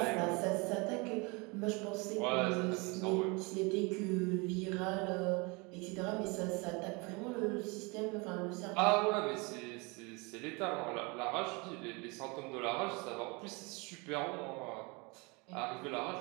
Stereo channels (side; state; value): left; quieter; 28.5 dB